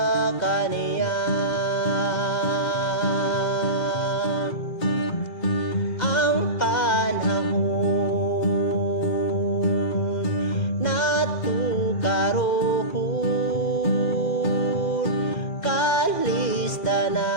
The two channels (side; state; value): right; late; 2.0 ms